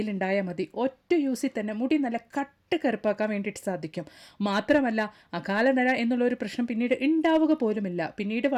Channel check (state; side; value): identical; both; correlation 1.00